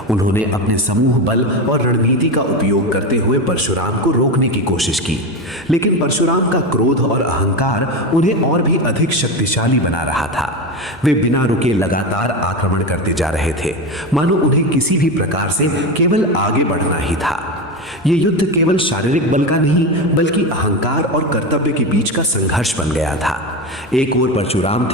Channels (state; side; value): noise; right; hum, 28 dB below the sound